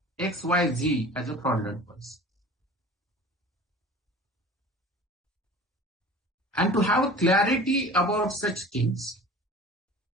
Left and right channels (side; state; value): both; normal; correlation 0.41